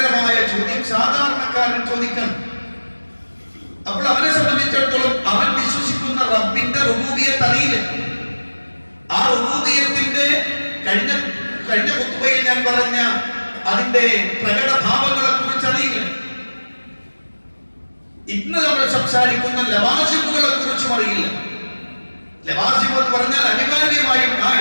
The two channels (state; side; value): inverted; both; correlation -1.00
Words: ചോദ്യം സാധാരണക്കാരൻ ചോദിക്കണം. അപ്പോൾ അവനെ സംബന്ധിച്ചിടത്തോളം അവൻ വിശ്വസിക്കുന്ന റബ്ബിന്റെ റുബൂബിയത്ത് അറിയില്ല. ആ റുബൂബിയത്തിന്റെ കഴിഞ്ഞ ഖുത്ബയിൽ ഞാൻ പറഞ്ഞ അതിന്റെ പ്രകടഭാവങ്ങളെ കുറിച്ച് അറിയില്ല. ഇന്ന് നമ്മൾ സംസാരിക്കുന്ന ലവാസിമുകളെ കുറിച്ചും അറിയില്ല. ലവാസിം എന്ന് പറഞ്ഞാൽ അനിവാര്യമായും ആ